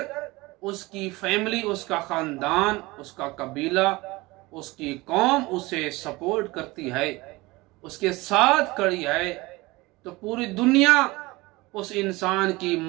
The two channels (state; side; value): quieter; left; 21.9 dB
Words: اس کی فیملی، اس کا خاندان، اس کا قبیلہ، اس کی قوم اسے سپورٹ کرتی ہے، اس کے ساتھ کھڑی ہے، تو پوری دنیا اس انسان کی